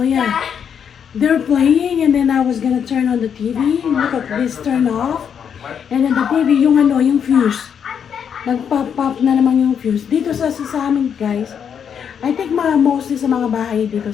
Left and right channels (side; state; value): right; quieter; 7.7 dB